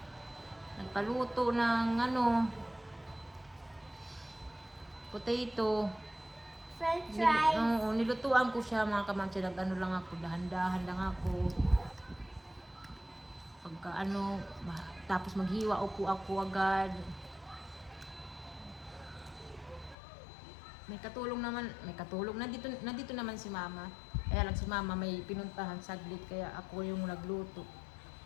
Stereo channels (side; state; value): right; drops out; at 20.0 s